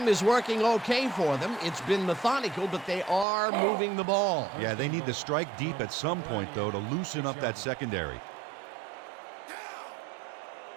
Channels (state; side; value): drops out; left; at 3.2 s